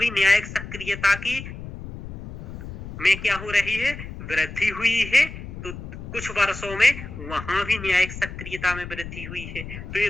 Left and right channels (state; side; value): noise; left; rumble, 11 dB below the sound